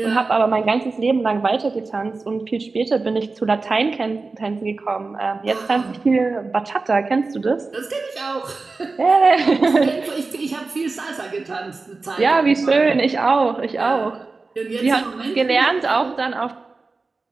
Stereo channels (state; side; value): quieter; left; 3.9 dB